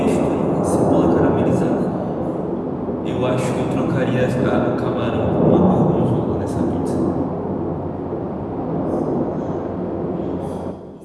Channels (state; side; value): identical; both; correlation 1.00